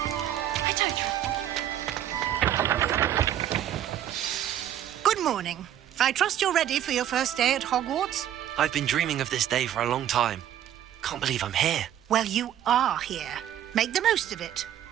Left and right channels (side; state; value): left; quieter; 11.0 dB